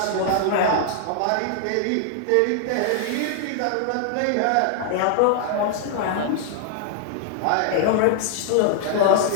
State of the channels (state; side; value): different; both; correlation 0.00